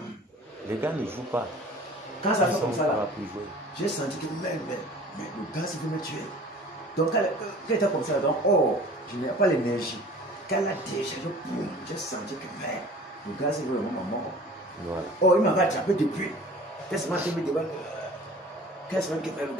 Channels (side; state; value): both; normal; correlation 0.45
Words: Les gars ne jouent pas. Quand ça fait comme ça là, plus jouer. j'ai senti que mais le gars il veut me tuer. Donc quand il était comme ça, donc oh, je n'ai pas l'énergie. Quand la décharge, boum, j'ai senti que mais le gars il veut vraiment mort. Voilà. Oh, il m'avait attrapé depuis. Qu'est-ce que je me demande? Qu'est-ce que le